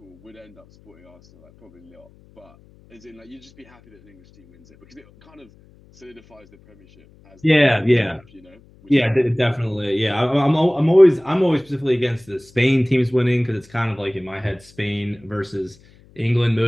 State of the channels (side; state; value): left; noise; hum, 28 dB below the sound